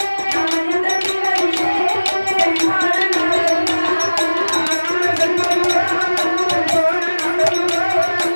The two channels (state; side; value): inverted; both; correlation -1.00